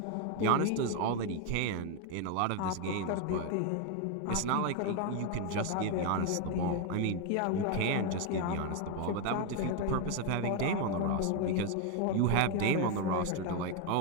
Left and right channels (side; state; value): both; different; correlation 0.01